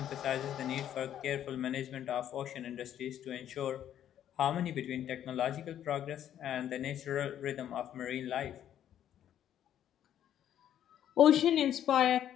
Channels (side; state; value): right; quieter; 10.6 dB